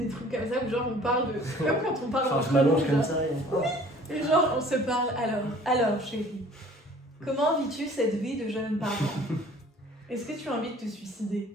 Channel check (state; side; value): normal; both; correlation 0.51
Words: trucs comme ça où genre on parle de. Comme quand on parle Enfin, entre je m'allonge nous, comme là. ça et Et genre on se parle alors chérie, comment vis-tu cette vie de jeune parent? Est-ce que tu as envie de te